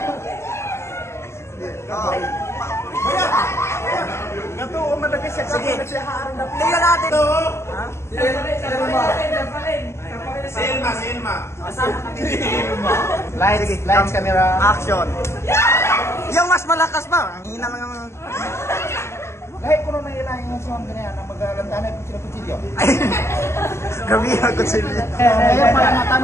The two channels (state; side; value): late; right; 0.13 ms